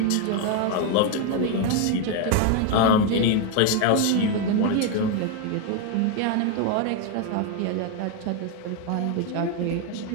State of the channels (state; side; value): different; both; correlation 0.01